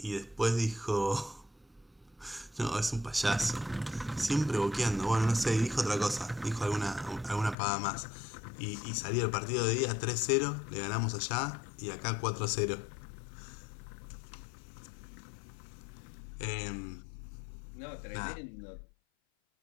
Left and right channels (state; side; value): drops out; right; at 7.6 s